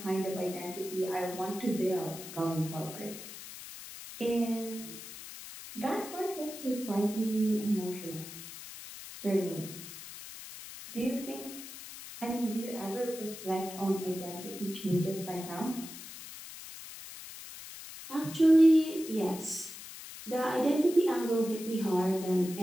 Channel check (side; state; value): left; noise; hiss, 13 dB below the sound